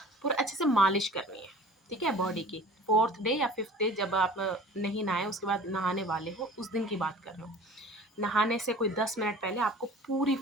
पूरा अच्छे से मालिश करनी है, ठीक है, बॉडी की। 4th डे या 5th डे जब आप नहीं नहाए, उसके बाद नहाने वाले हो, उस दिन की बात कर रहे हो। नहाने से कोई 10 मिनट पहले आपको पूरी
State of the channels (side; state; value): both; normal; correlation 0.44